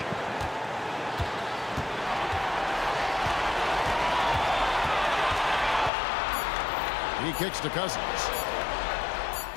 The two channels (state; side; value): drops out; right; at 5.9 s